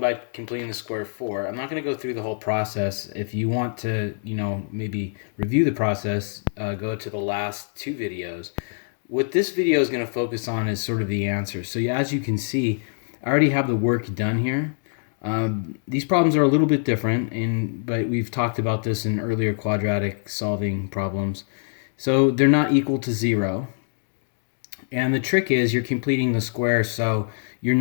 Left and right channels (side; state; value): right; silent; digital silence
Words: completing the square of 4. I'm not going to go through the whole process. If you want to, maybe review the process, go to the last two videos. What this video is going to focus on is sort of the answer. So yeah, as you can see, I already have the work done here. These problems are a little bit different, but we've talked about this in earlier quadratic solving problems. So they're not equal to 0. And the trick is you're completing the square, so you're